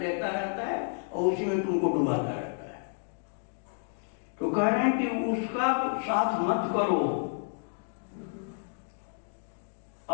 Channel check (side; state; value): right; silent; digital silence